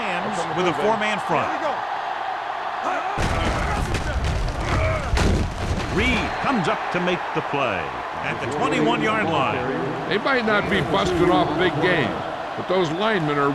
with a 4-man front. Here we go. Reed comes up to make the play at the 21-yard line. They might not be busted off big games, but those linemen are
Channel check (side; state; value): both; identical; correlation 1.00